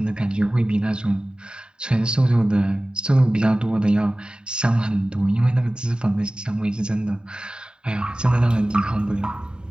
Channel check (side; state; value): left; late; 0.049 ms